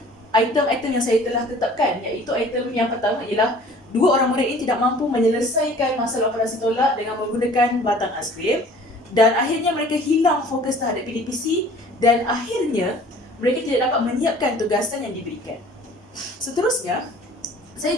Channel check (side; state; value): both; normal; correlation 0.50